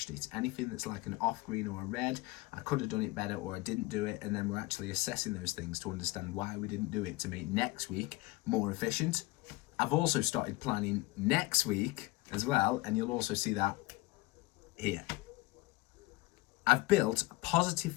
it. Anything that's like an off green or a red, I could have done it better or I didn't do it, and then we're actually assessing those things to understand why we didn't do it to make next week more efficient. I've also started planning next week as well, and you'll also see that here. I've built positive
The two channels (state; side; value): quieter; right; 21.0 dB